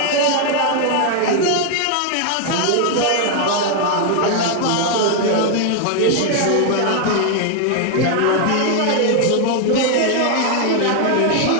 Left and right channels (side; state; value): both; different; correlation 0.00